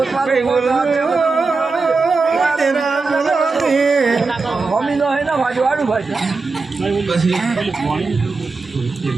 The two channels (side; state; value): left; quieter; 4.1 dB